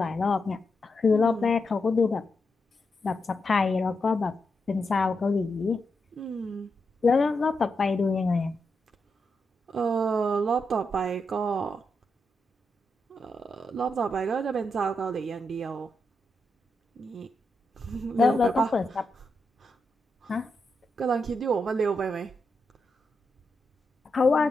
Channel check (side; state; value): both; normal; correlation 0.85